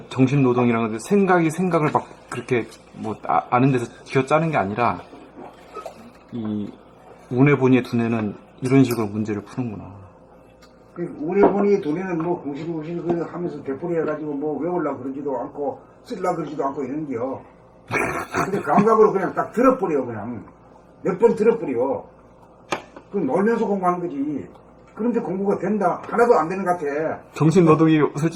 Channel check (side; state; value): both; identical; correlation 1.00